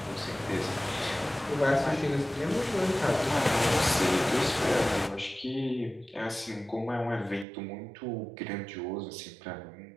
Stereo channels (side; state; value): left; drops out; at 7.5 s